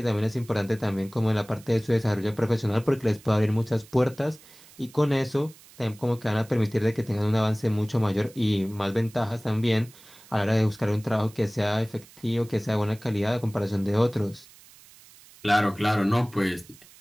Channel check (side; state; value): right; noise; hiss, 23 dB below the sound